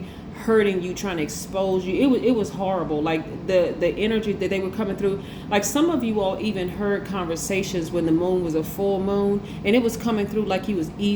hurting you, trying to expose you. It was horrible. Like the energy that they were coming through. Like some of you all even heard conversations when the moon was a full moon, and it was coming through like he was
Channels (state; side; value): identical; both; correlation 1.00